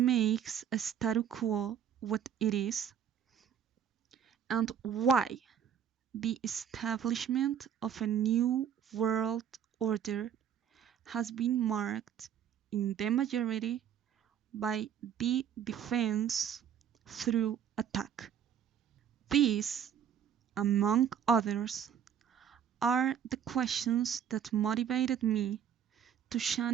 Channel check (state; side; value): quieter; left; 8.8 dB